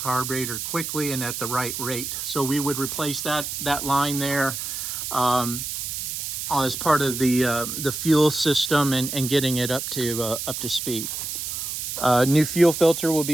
quickly and at the right rate. So we would replace that line there as part of the fuel system and getting it up to speed. New fuel filter will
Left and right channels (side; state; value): right; noise; hiss, 5 dB below the sound